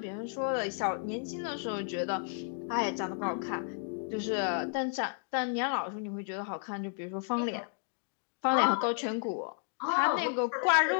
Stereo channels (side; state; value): right; silent; 56 dB below the other